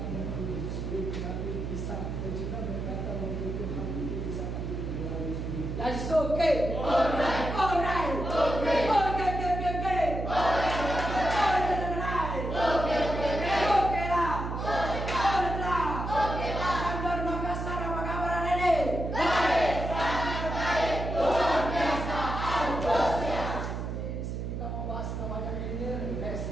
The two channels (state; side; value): noise; right; hum, 4 dB below the sound